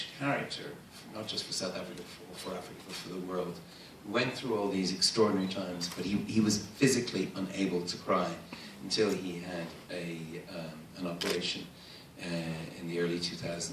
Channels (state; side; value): identical; both; correlation 1.00